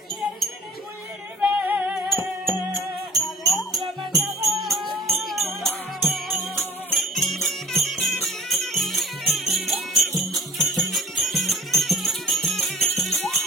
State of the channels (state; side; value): normal; both; correlation 0.47